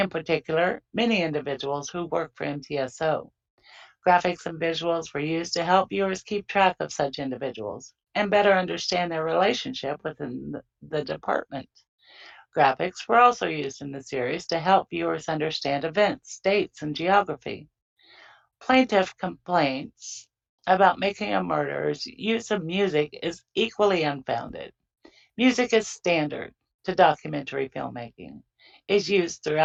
particular, many individuals who work for MTSO. Graphics and visuals were used to help viewers keep track of such individuals and better understand their relationship within the department. Graphics were also used in the series to help viewers understand events, dates, and geography. Plaintiff complaints about Making a Murderer's use of music is equally unfounded. Music is standard to documentary filmmaking, is used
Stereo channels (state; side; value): identical; both; correlation 1.00